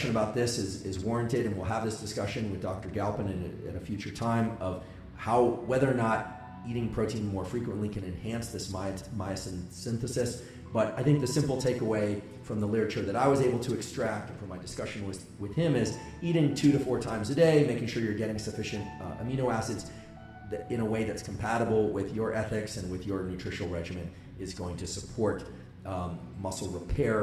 about this is warranted, and we'll have this discussion with Dr. Galpin at a future time of whether or not eating protein more frequently can enhance this myosin synthesis. But I think the simple takeaway from the literature that I was able to extract from my discussion with him is eating 2 to 4 times a day, making sure you're getting sufficient amino acids in a way that's compatible with your ethics and with your nutritional regimen is going to support muscle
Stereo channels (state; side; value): identical; both; correlation 1.00